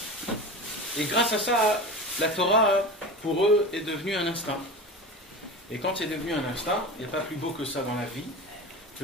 Et grâce à ça, la Torah, pour eux, est devenue un instinct. Et quand c'est devenu un instinct, il n'y a pas plus beau que ça dans la vie,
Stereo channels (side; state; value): both; normal; correlation 0.29